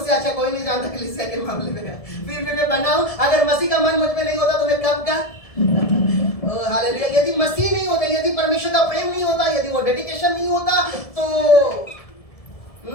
अच्छा कोई नहीं जानता कलीसिया के मामले में। फिर भी मैं बनाऊं, अगर मसीह का मन मुझ में नहीं होता तो मैं कब का। हालेलुया। यदि मसीह नहीं होता, यदि परमेश्वर का प्रेम नहीं होता, यदि वो डेडिकेशन नहीं होता तो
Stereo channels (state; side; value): late; right; 1.7 ms